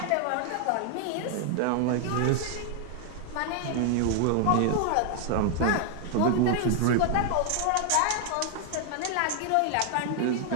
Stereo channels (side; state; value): both; different; correlation 0.00